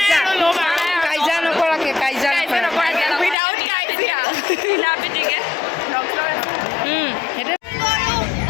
কাইজা নকৰাকে কাইজা নকৰাকে উইদাউট কাজিয়া বিনা পিটিকে সেইটো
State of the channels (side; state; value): right; drops out; at 3.4 s